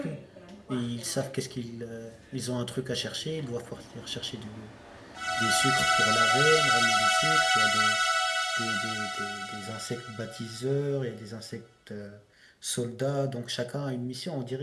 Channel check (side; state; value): both; identical; correlation 1.00